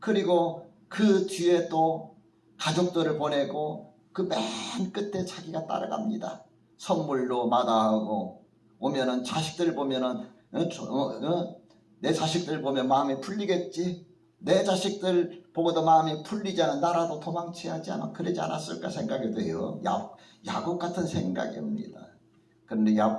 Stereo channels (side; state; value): both; identical; correlation 1.00